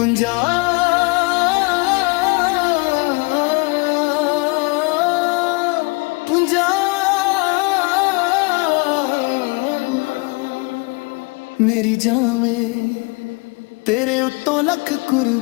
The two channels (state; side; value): quieter; right; 27.8 dB